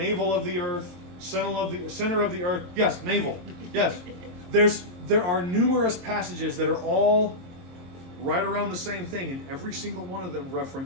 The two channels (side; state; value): left; late; 22 ms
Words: of the earth, center of the earth. Yes, navel. Yes. There are numerous passages that are all right around the same thing, and every single one of them